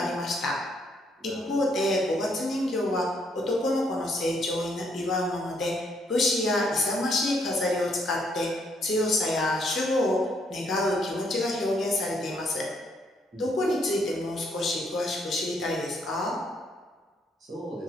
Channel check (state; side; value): normal; both; correlation 0.72